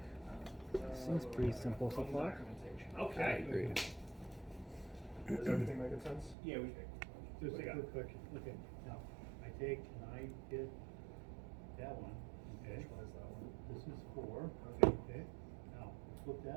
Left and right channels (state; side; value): drops out; left; at 6.4 s